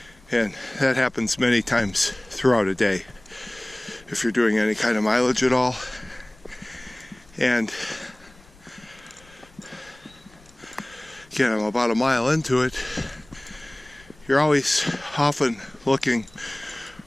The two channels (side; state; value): left; noise; rumble, 27 dB below the sound